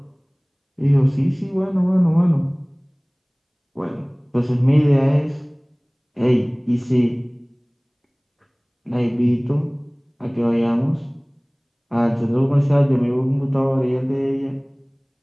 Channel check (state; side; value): identical; both; correlation 1.00